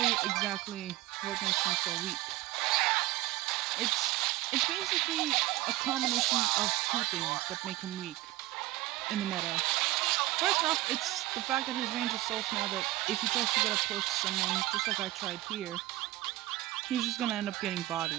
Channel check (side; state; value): left; quieter; 17.9 dB